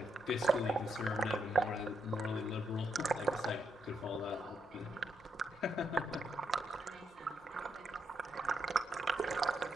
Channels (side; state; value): both; normal; correlation 0.79